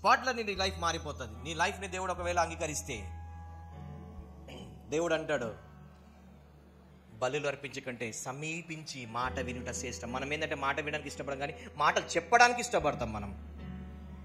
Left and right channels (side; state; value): both; identical; correlation 1.00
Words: నీ లైఫ్ మారిపోతుంది. నీ లైఫ్ని దేవుడు ఒకవేళ అంగీకరిస్తే దేవుడు అంటాడు, బలులు అర్పించకంటే సమీపించి మాట వినుట శ్రేష్టం. మనం ఏంటంటే మాట వినడానికి ఇష్టపడం, కానీ మాటలు చెప్పడానికి ఇష్టపడతాం మనం.